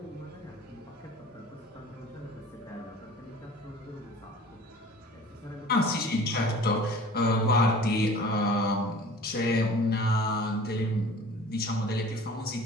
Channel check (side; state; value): both; normal; correlation 0.45